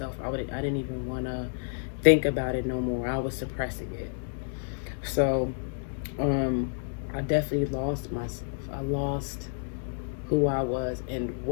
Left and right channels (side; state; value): right; silent; 57 dB below the other